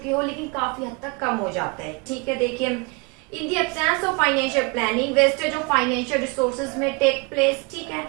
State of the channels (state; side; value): quieter; left; 30.4 dB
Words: हो, लेकिन काफी हद तक कम हो जाता है। ठीक है, देखिए in the absence of financial planning wastage of financial resources may take place. ठीक है,